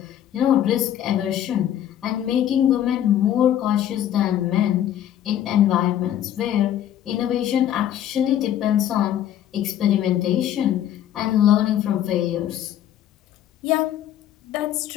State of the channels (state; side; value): quieter; right; 11.1 dB